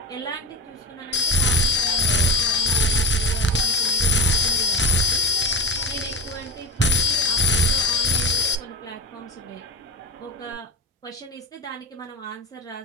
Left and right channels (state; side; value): normal; both; correlation 0.23